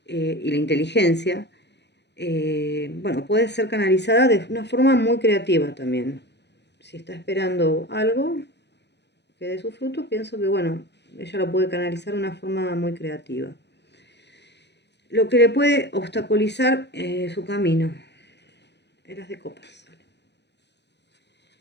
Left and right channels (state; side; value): late; right; 0.50 ms